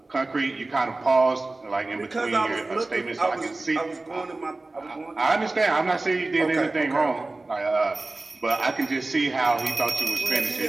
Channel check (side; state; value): left; quieter; 3.1 dB